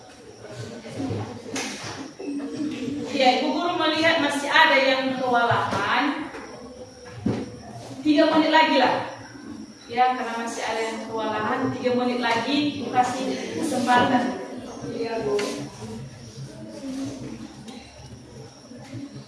Ya, Ibu Guru melihat masih ada yang kewalahan. 3 menit lagi lah. Ya, karena masih ada yang kewalahan, 3 menit lagi Ibu kasih kesempatan. Iya, Bu.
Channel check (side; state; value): both; identical; correlation 1.00